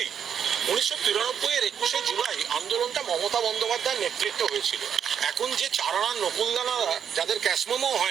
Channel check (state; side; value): quieter; left; 8.1 dB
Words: 1993-এর 21শে জুলাই আন্দোলনটা মমতা বন্দ্যোপাধ্যায়ের নেতৃত্বে হয়েছিল। এখন যে চারানা নকুলদানারা, যাদের ক্যাশমোমো